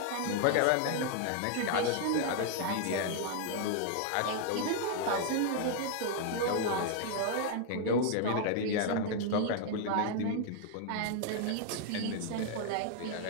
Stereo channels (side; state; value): both; different; correlation 0.00